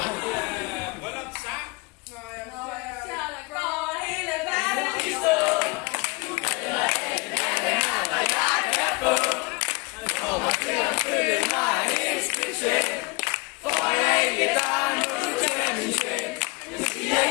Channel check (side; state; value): right; quieter; 27.2 dB